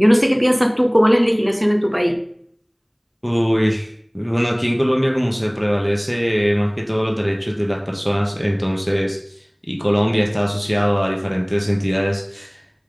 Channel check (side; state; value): both; identical; correlation 1.00